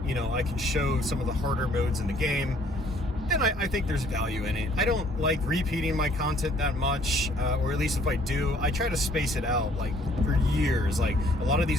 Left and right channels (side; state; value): both; normal; correlation 0.60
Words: you know, I can show some of the harder modes in the game, then I think there's value in it. I don't like repeating my content that much, or at least if I do, I try to space it out like for years. Like a lot of